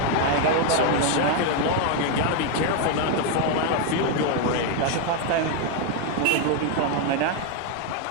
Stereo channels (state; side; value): different; both; correlation 0.01